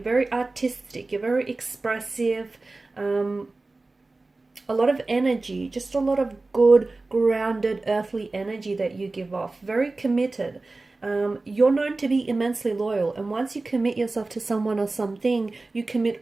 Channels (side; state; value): left; quieter; 3.3 dB